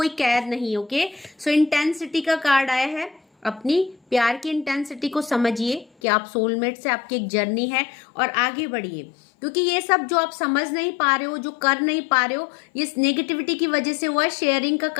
कैद नहीं है। ओके, सो इंटेंसिटी का कार्ड आया है। अपनी प्यार की इंटेंसिटी को समझिए कि आप सोलमेट से आपकी एक जर्नी है और आगे बढ़िए, क्योंकि ये सब जो आप समझ नहीं पा रहे हो, जो कर नहीं पा रहे हो, ये नेगेटिविटी की वजह से हुआ है। शेयरिंग का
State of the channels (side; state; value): right; drops out; at 5.9 s